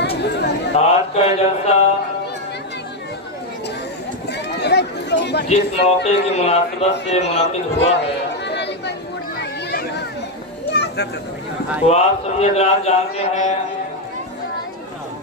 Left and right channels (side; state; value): both; normal; correlation 0.05